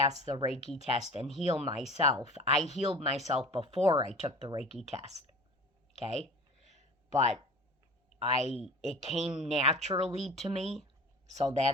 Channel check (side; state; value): both; normal; correlation 0.38